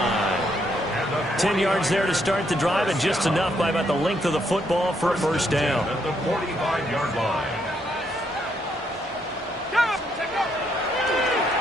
10 yards there to start the drive, and just enough by about the length of the football for a first down. At the 45-yard line.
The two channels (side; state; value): both; normal; correlation 0.74